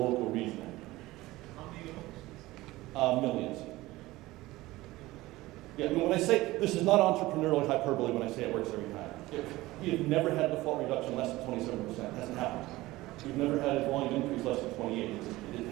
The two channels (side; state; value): left; quieter; 18.5 dB